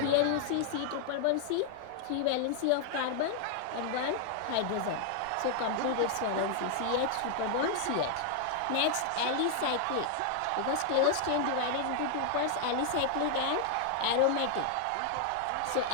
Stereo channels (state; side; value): different; both; correlation 0.00